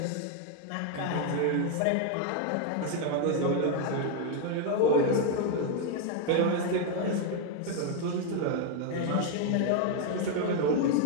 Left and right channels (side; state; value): both; different; correlation 0.01